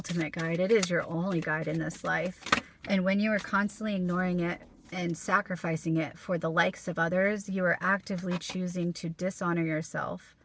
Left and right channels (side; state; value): both; identical; correlation 1.00